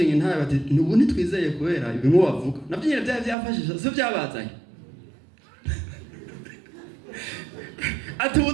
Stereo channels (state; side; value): drops out; left; at 3.4 s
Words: intare bati nubu nitwizeye kubera ibimwe bavuga navyo nyine byafashije so byabazanye ati ubu